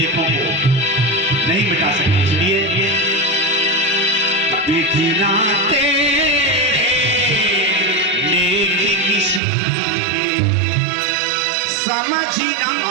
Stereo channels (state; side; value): drops out; left; at 9.4 s